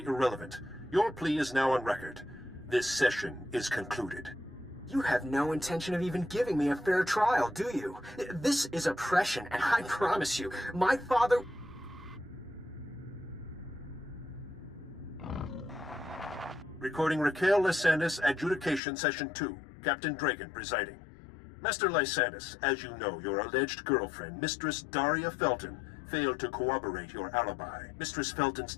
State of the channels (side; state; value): right; drops out; at 18.8 s